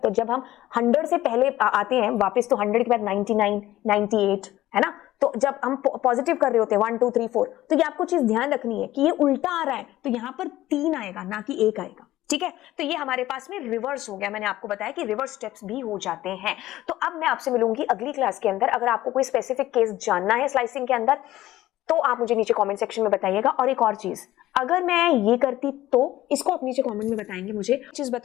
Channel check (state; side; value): quieter; right; 15.2 dB